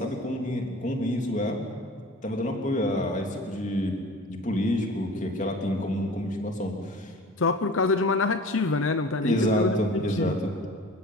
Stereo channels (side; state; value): both; normal; correlation 0.42